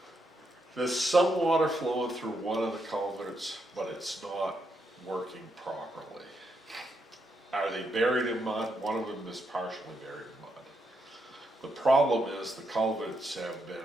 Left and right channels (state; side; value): normal; both; correlation 0.80